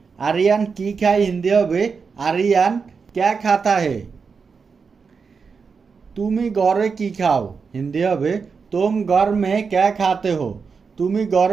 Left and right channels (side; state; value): left; quieter; 5.4 dB